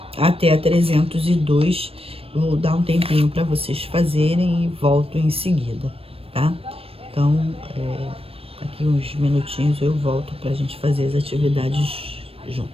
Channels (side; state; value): left; late; 0.28 ms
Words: até a 302. Vou dar um tempinho para vocês fazerem e volto em seguida, tá? Então, aqui uns minutinhos eu volto para a gente fazer as atividades